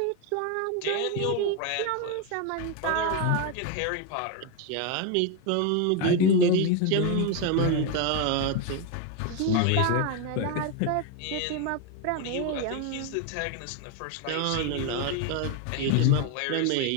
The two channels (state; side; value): different; both; correlation 0.01